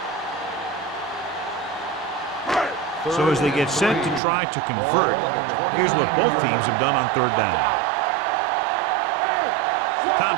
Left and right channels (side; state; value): left; drops out; at 4.2 s